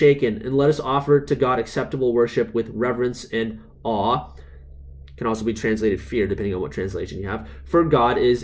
and let us offer to God acceptable worship with reverence and awe." Can also be translated fear, depending on what translation you have. "For God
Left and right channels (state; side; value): identical; both; correlation 1.00